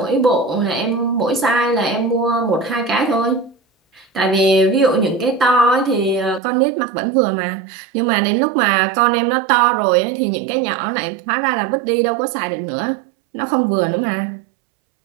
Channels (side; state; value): left; drops out; at 6.4 s